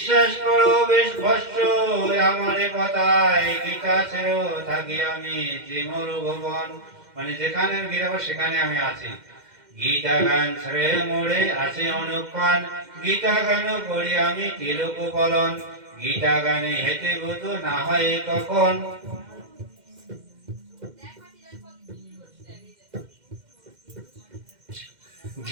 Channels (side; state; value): left; late; 2.1 ms